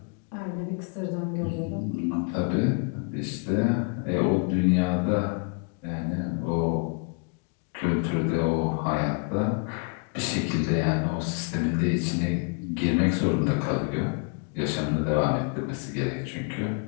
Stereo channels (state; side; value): quieter; right; 37.3 dB